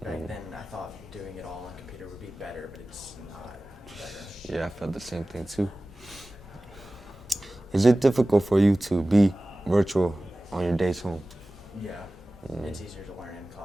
Back then, I thought doing it all on the computer would be better, but it's not better. Yeah, I felt the same thing too. Is it difficult for you to be virtual on your days home? Yeah, it's easier to learn in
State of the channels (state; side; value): normal; both; correlation 0.97